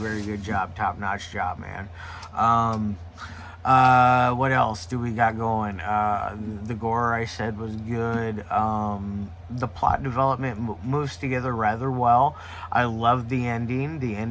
good job, top notch job, man. Um, what else do we got going? The gore I said was good. The plot development moves together rather well. I love the ending. The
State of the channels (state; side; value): identical; both; correlation 1.00